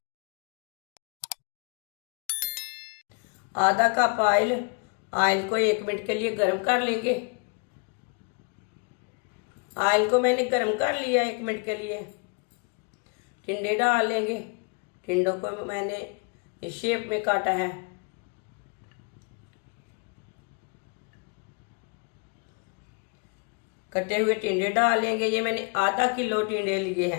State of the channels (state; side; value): quieter; right; 36.7 dB